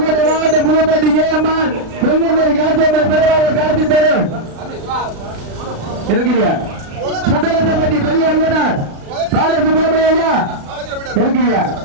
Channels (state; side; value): late; left; 36 ms